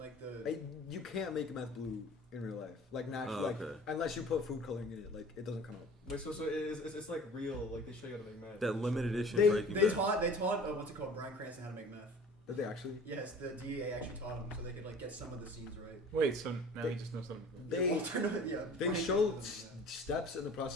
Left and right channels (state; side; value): normal; both; correlation 0.45